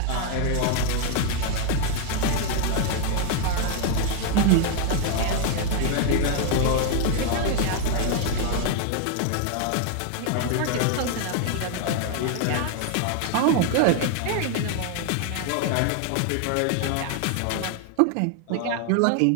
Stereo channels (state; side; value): different; both; correlation 0.01